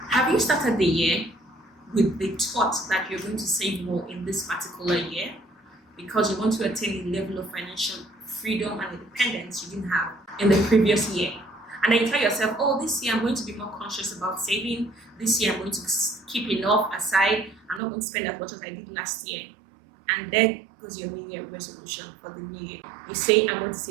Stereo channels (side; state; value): left; drops out; at 17.8 s